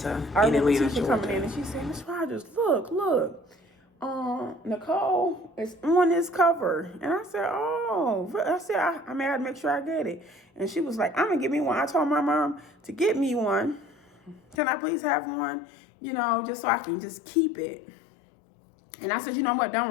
in Atlanta, Tisha coming in and she said, Miss Rogers, look. Nicole is on this cover. And I said, I had to make sure I get it. And she was like, I'm going to get me one. I told my mom to get me one. Can I please have one? You know, just so I can just keep it. And I said, you know what? Don't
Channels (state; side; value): drops out; right; at 14.6 s